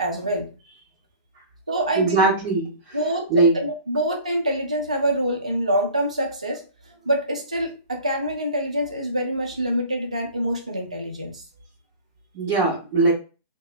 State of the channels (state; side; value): inverted; both; correlation -0.43